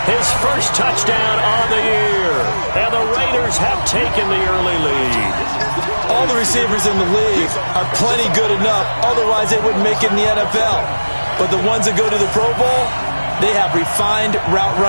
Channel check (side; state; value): both; inverted; correlation -1.00